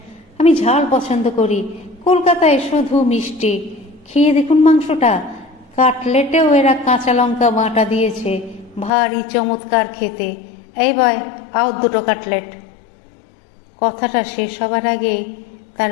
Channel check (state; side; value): drops out; right; at 8.9 s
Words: আমি ঝাল পছন্দ করি, কলকাতায় শুধু মিষ্টি। খেয়ে দেখুন মাংসটা, কাটলেটেও এরা কাঁচা লঙ্কা বাটা দিয়েছে, ভারী চমৎকার খেতে। এই বয়, আও 2 কাটলেট। কথাটা শেষ হবার আগেই তার